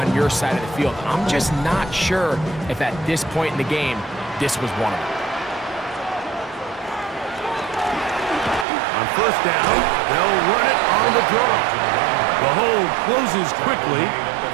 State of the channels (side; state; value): left; drops out; at 8.7 s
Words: your side of the field. I'm just not sure if at this point in the game, this was one of them. On first down, they'll run it on the draw. The hole closes quickly.